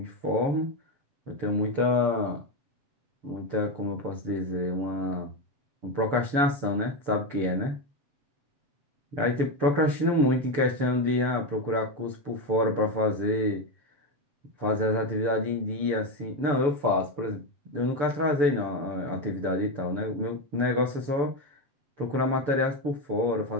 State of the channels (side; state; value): left; late; 6.9 ms